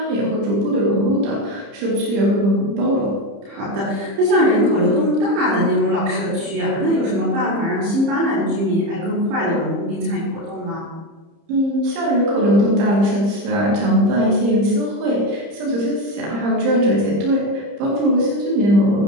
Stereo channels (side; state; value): left; late; 30 ms